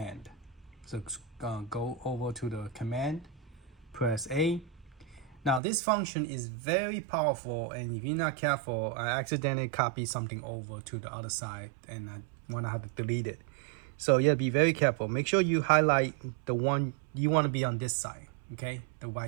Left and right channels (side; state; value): left; drops out; at 5.6 s